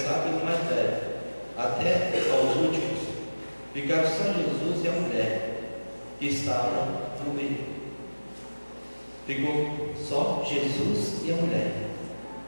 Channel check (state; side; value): inverted; both; correlation -1.00